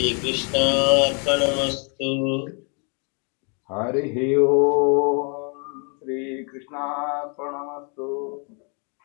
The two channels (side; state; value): right; quieter; 37.0 dB